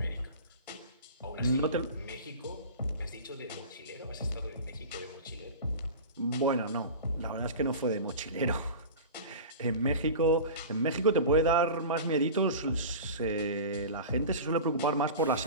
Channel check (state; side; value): inverted; both; correlation -0.32